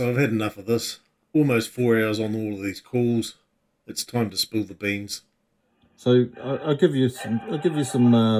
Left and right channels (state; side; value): identical; both; correlation 1.00